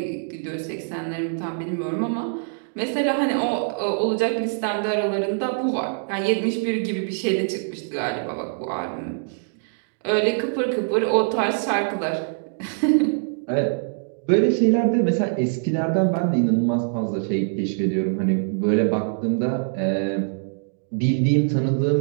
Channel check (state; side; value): silent; left; digital silence